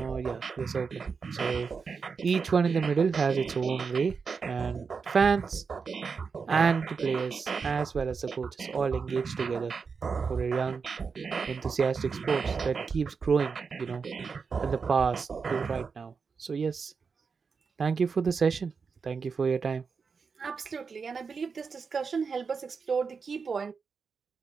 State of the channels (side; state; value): left; quieter; 5.4 dB